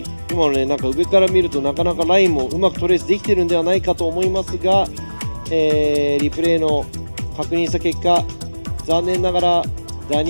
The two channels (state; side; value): inverted; both; correlation -1.00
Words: 今のね、なんか上から見るとなかなかラインもうまくトレースできてるんではないかと思いますが、リプレイの確認した結果、残念ながらダ